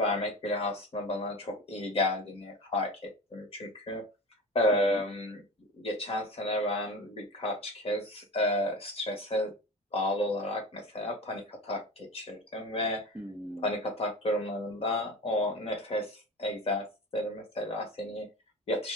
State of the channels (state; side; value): normal; both; correlation 0.31